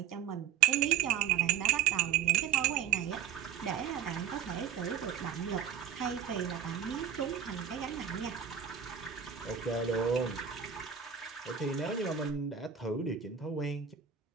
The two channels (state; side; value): quieter; left; 8.6 dB